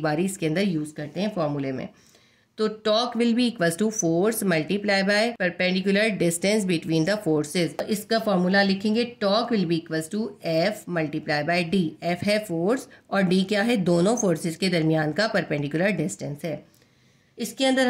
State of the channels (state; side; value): identical; both; correlation 1.00